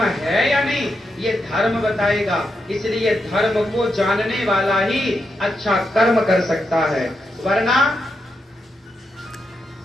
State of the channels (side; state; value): both; normal; correlation 0.84